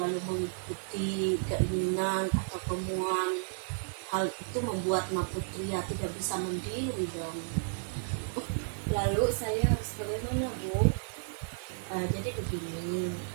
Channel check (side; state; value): left; silent; digital silence